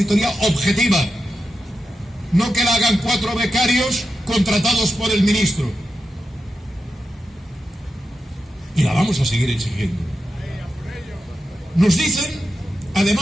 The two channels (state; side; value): normal; both; correlation 0.89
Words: objetiva, no que la hagan 4 becarios contratados por el ministro. Y la vamos a seguir exigiendo. Nos dicen,